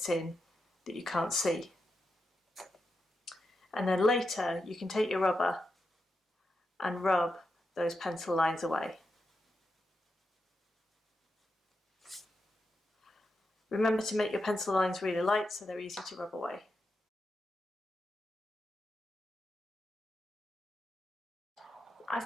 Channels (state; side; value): normal; both; correlation 0.87